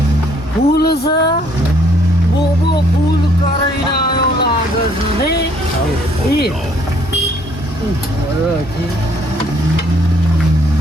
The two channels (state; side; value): normal; both; correlation 0.64